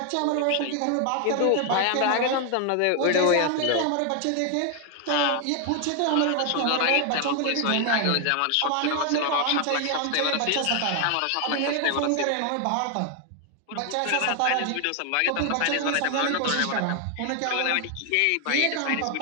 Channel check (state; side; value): different; both; correlation 0.00